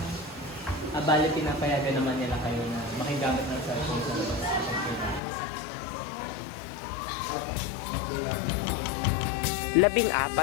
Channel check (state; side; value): drops out; right; at 5.2 s